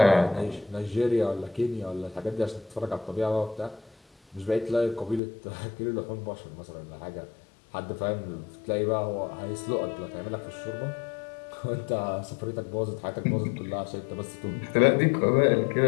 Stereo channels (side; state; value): right; drops out; at 5.2 s